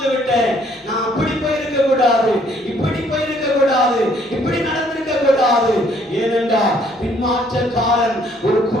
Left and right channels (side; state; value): both; normal; correlation 0.64